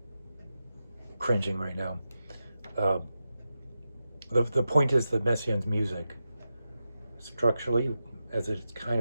cringing right now. The point is that Messiaen's music, structurally, as it's kind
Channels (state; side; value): inverted; both; correlation -0.90